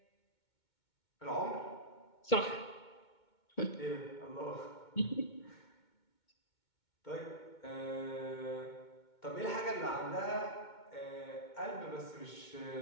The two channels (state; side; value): late; right; 2.2 ms